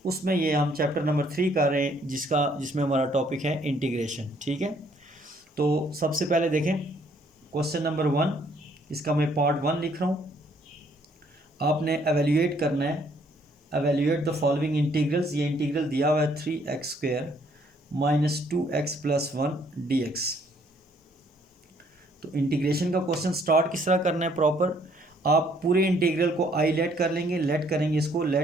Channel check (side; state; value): both; normal; correlation 0.65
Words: उसमें ये हम चैप्टर नंबर 3 कर रहे हैं, जिसमें हमारा टॉपिक है इंटीग्रेशन। ठीक है, तो सबसे पहले देखें क्वेश्चन नंबर 1, इसका मैं पार्ट 1 लिख रहा हूँ। आपने एवेल्यूएट करना है, एवेल्यूएट द फॉलोइंग इंटीग्रल्स। ये इंटीग्रल दिया हुआ है 3x² minus 2x plus 1 dx। तो इंटीग्रेशन का क्वेश्चन स्टार्ट किस तरह करना है प्रॉपर, आप पूरे इंटीग्रल को आई लेट कर लेंगे, लेट करेंगे इसको,